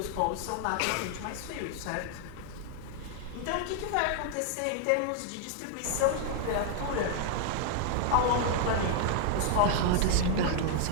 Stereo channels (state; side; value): different; both; correlation 0.00